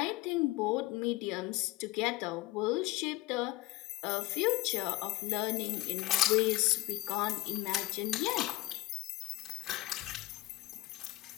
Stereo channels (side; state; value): right; quieter; 18.1 dB